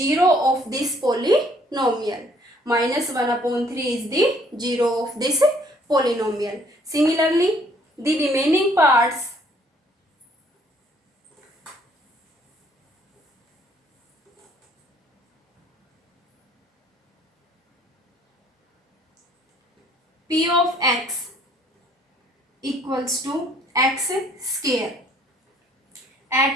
of this polynomial. Minus 1 upon 3 is the 0 of this polynomial. Similarly, the remaining parts p of x equals to x square at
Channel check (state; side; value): normal; both; correlation 0.61